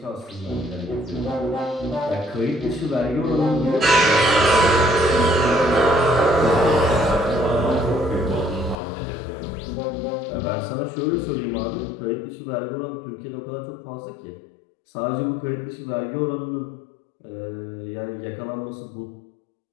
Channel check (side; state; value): right; drops out; at 8.8 s